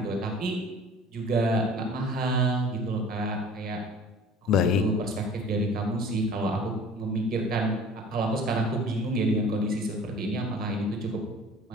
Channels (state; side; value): normal; both; correlation 0.46